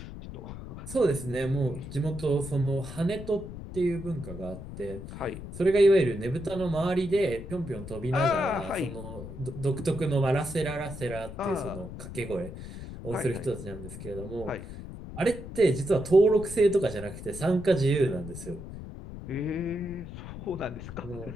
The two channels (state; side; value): noise; left; rumble, 11 dB below the sound